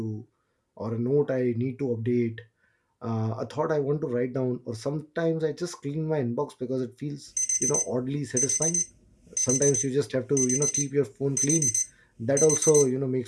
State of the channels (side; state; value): both; identical; correlation 1.00